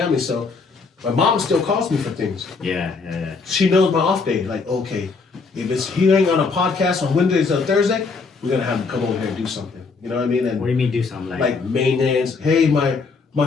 so my mom still calls me for things. Yeah. She knows my off day. Like, okay, if he ain't on a podcast on Wednesdays or Thursday, we're going to have him come over here and do something. You know what I mean? And what do you mean do something like maintenance? Hey, my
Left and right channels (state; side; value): quieter; right; 4.5 dB